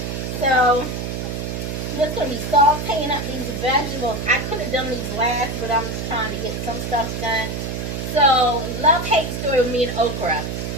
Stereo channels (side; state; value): right; noise; hum, 4 dB below the sound